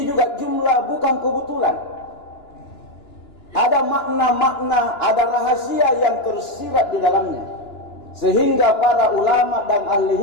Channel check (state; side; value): late; right; 2.9 ms